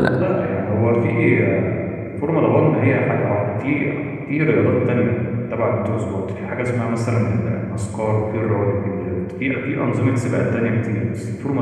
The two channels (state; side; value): identical; both; correlation 1.00